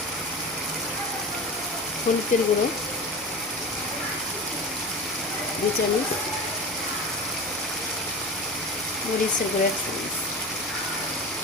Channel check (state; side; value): normal; both; correlation 0.30